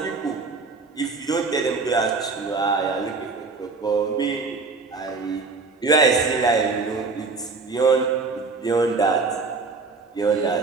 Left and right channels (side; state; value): left; quieter; 4.2 dB